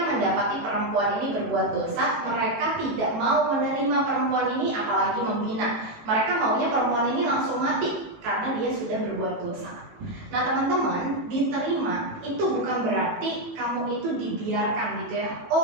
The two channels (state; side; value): late; left; 18 ms